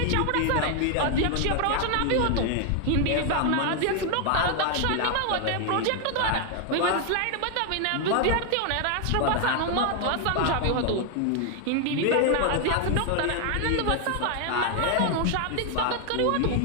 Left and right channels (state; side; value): different; both; correlation 0.00